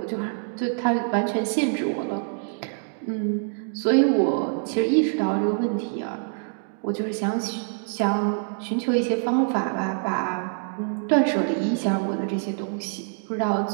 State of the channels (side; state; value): left; silent; 62 dB below the other